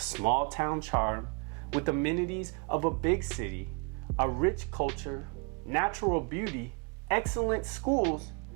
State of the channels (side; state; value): left; quieter; 35.1 dB